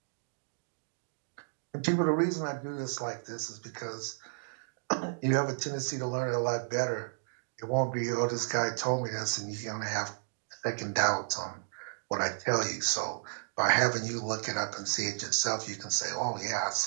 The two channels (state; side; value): silent; left; digital silence